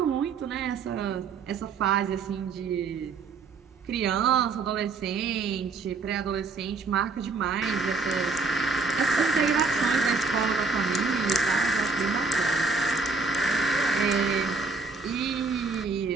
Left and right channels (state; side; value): quieter; left; 4.4 dB